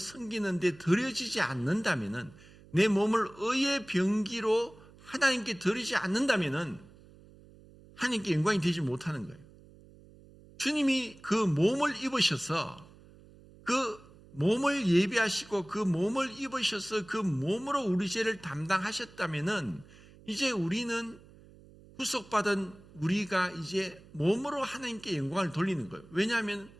데 드려지지 않는다면은, 내 몸을 의의 병기로 하나님께 드리지 않는다면은 하나님께 영광이 되지 못하는 거예요. 주님이 그 몸을 입으셔서 그 몸을 예비하시고 그 몸을 입으셔서 그 몸으로 우리 죄를 담당하셨다면은 이제 우리는 구속받은 우리가 이제 몸으로 하나님께 영광을 돌리는 거예요. 왜냐하면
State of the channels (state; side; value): noise; right; hum, 23 dB below the sound